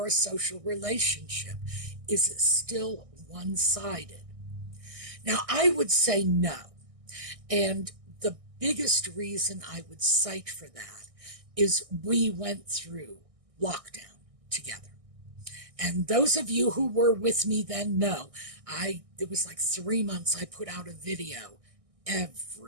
relationship? Is it still one-sided? Now, I would say no. And the biggest reason I would cite for that is we went through lockdown together. And those of you who were with me then know, it was like 3 months I put out a video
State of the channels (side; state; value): left; late; 1.6 ms